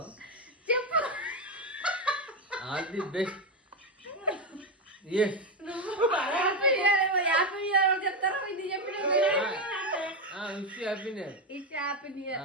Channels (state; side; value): normal; both; correlation 0.09